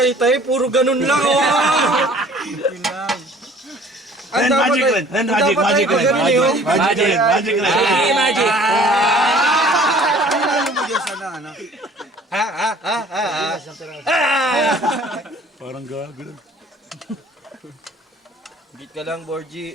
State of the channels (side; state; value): both; normal; correlation 0.52